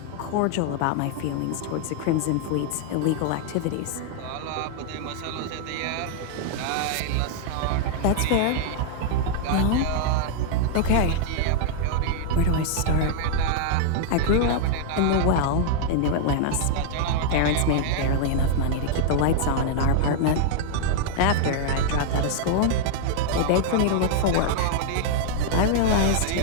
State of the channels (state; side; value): different; both; correlation 0.00